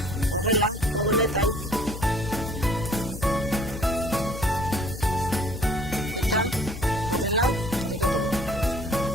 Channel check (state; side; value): noise; left; hum, 10 dB below the sound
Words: horrela, modu honetan, eta horrela jarriko dugu.